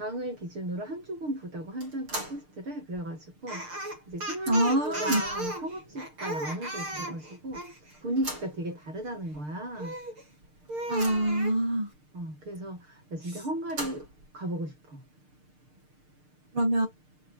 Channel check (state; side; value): late; left; 6.6 ms